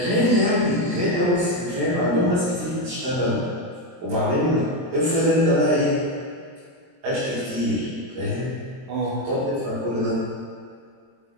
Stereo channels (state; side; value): late; left; 23 ms